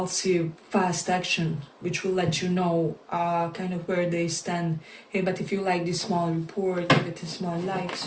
fast action, which will let you know kind of where they stand. Hey, but if you like this small report, give it a small like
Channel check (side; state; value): both; identical; correlation 1.00